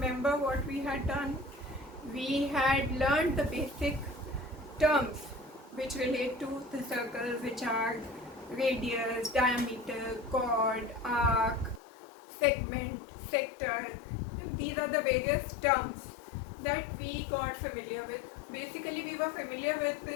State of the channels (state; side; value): drops out; right; at 11.8 s